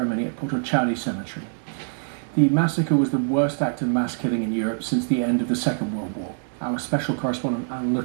at Potocari Cemetery. The massacre was the worst act of mass killing in Europe since the end of the Second World War. Our special correspondent Alan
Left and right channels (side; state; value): left; silent; 62 dB below the other